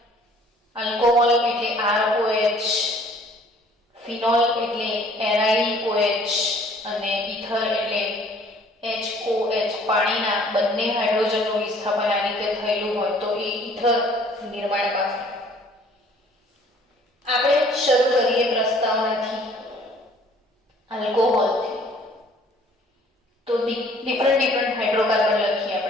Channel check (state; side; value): normal; both; correlation 0.56